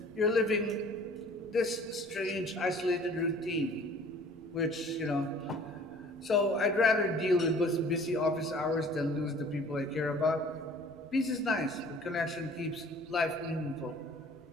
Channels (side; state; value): left; noise; rumble, 30 dB below the sound